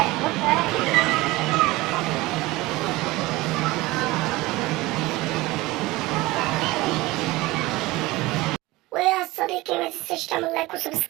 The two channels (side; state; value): left; quieter; 20.0 dB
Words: ويا صديقي ما تنساش تعمل لايك